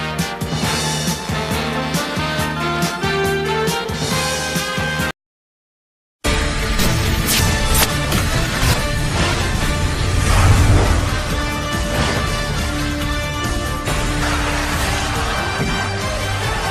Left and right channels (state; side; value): identical; both; correlation 1.00